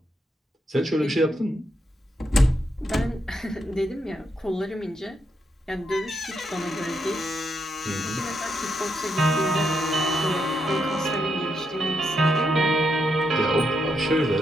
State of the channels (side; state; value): both; normal; correlation 0.80